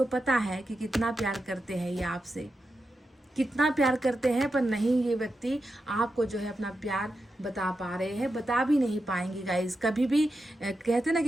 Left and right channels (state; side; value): normal; both; correlation 0.88